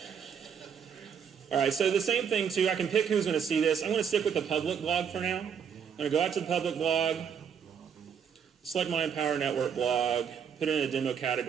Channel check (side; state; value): left; quieter; 7.5 dB